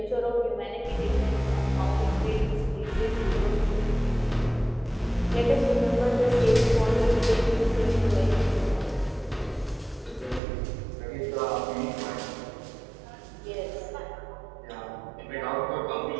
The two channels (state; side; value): drops out; left; at 10.4 s